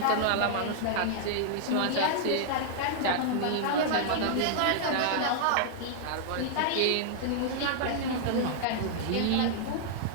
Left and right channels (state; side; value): different; both; correlation -0.01